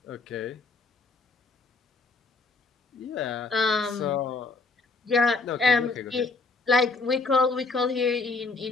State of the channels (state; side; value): quieter; right; 3.8 dB